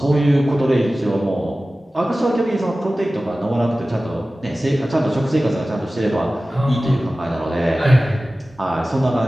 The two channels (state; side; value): normal; both; correlation 0.96